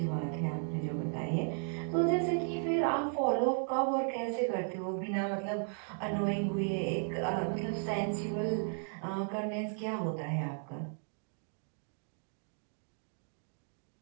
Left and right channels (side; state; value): left; silent; 54 dB below the other